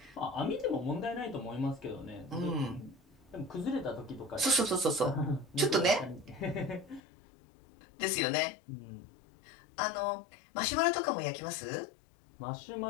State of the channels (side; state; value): right; drops out; at 7.0 s